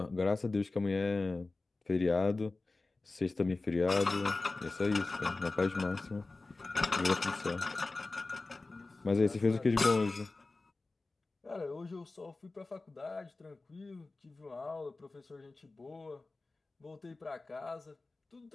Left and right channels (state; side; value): quieter; right; 3.4 dB